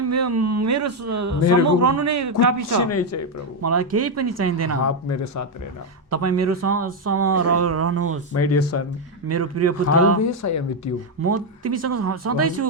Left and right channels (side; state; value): both; normal; correlation 0.04